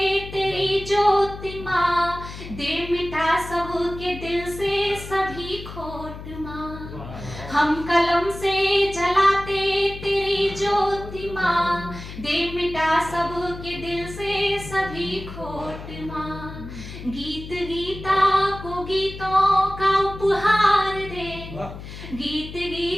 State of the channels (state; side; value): noise; left; hum, 12 dB below the sound